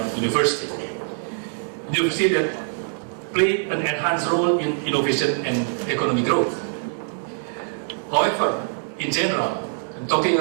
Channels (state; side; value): silent; left; digital silence